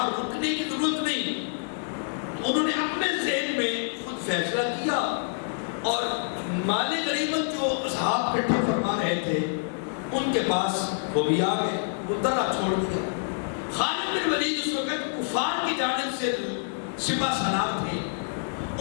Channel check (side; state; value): right; silent; digital silence